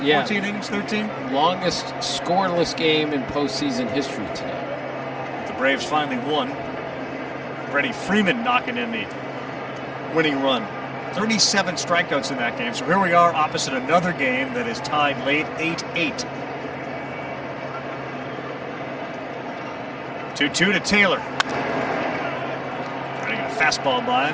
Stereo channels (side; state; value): both; identical; correlation 1.00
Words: Yeah. 14 innings? 13? Longest scoreless game in postseason history today. The Braves finally won. Freddie Freeman knocking in the winning run. 37 strikeouts in that game. So here we are opposite another game that is tied late, 8-8. 2-2 to Taylor. Getting a fastball by